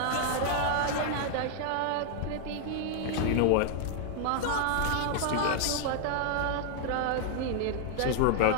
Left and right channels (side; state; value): both; different; correlation 0.00